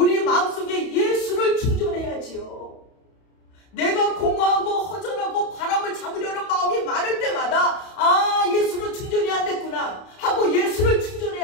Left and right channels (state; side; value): late; right; 31 ms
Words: 마음속에 예수를 충전해야지요. 내가 공허하고 허전하고 바람을 잡으려는 마음이 많을 때마다 예수로 충전이 안 됐구나 하고 예수를